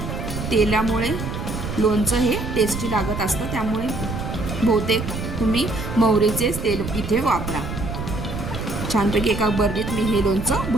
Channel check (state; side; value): noise; right; rumble, 6 dB below the sound